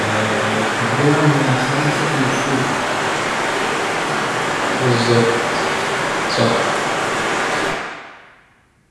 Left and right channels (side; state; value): both; identical; correlation 1.00